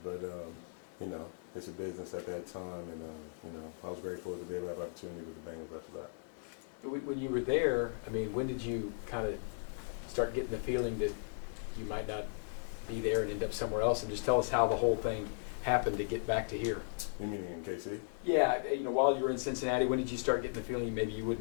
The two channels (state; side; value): silent; right; digital silence